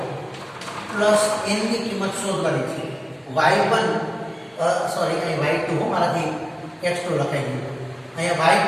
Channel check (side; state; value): both; identical; correlation 1.00